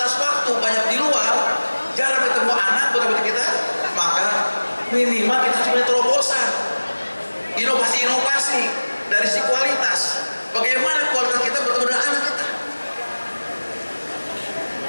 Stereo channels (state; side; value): inverted; both; correlation -1.00